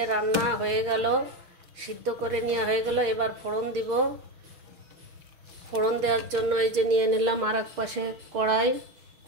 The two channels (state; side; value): late; left; 6.2 ms